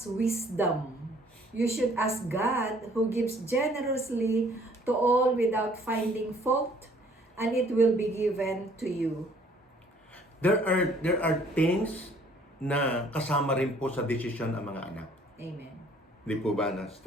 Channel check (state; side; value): normal; both; correlation 0.59